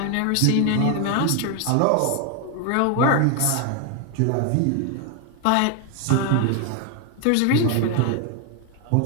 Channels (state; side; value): different; both; correlation 0.01